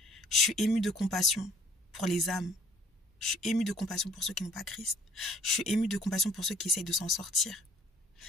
Je suis ému de compassion pour les âmes. Je suis ému de compassion pour ceux qui n'ont pas Christ. Je suis ému de compassion pour ceux qui essayent de s'en sortir.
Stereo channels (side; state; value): both; normal; correlation 0.57